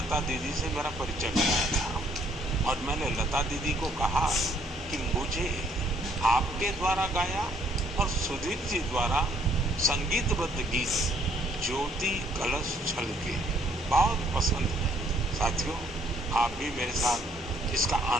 दीदी से मेरा परिचय कराया था और मैंने लता दीदी को कहा कि मुझे आपके द्वारा गाया और सुधीर जी द्वारा संगीतबद्ध गीत ज्योति कलश छलके बहुत पसंद है। साथियों, आप भी मेरे साथ इसका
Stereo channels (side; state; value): both; normal; correlation 0.65